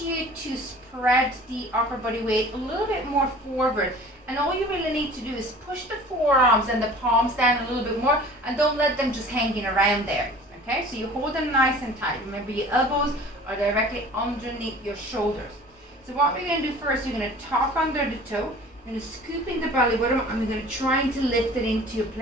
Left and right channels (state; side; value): normal; both; correlation 0.45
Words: you to spread the upper body weight a little bit more forward. And all you really need to do is push the forearms and the palms down a little bit more, and don't let them just hanging around there. Okay, so you hold them nice and tight. Remember, your elbows are directly underneath your shoulders. So what we're going to do first, we're going to tuck under the toe, we're going to scoop in the belly button, and we're going to try to lift it into a